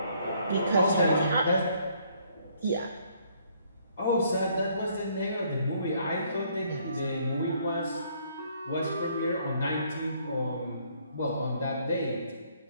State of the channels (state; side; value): inverted; both; correlation -0.66